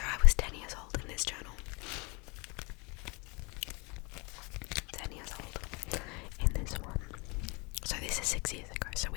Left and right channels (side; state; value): right; quieter; 29.7 dB